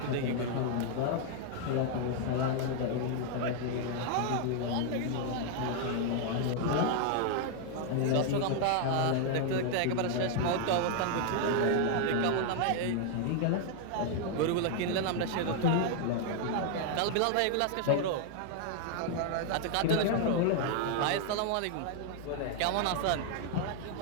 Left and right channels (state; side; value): different; both; correlation 0.00